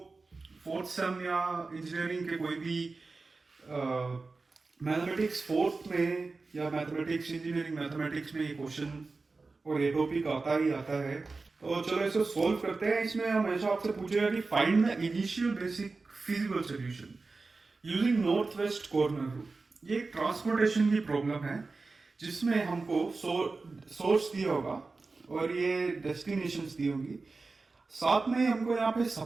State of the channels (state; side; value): quieter; left; 3.9 dB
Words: फोर्थ सेम या इंजीनियरिंग के कोई भी मैथमेटिक्स फोर्थ में या मैथमेटिक्स इंजीनियरिंग मैथमेटिक्स में ये क्वेश्चन और ये टॉपिक आता ही आता है। तो चलो इसको सॉल्व करते हैं। इसमें हमेशा आपसे पूछेगा कि find the initial basic feasible solution using north west corner rule. ये एक ट्रांसपोर्टेशन की प्रॉब्लम है जिसमें हमको सोर्स दिया होगा और ये डेस्टिनेशंस दी होंगी। साथ में हमको यहाँ पे